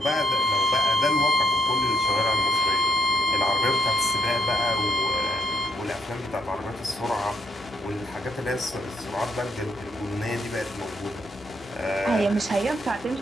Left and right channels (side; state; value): both; normal; correlation 0.73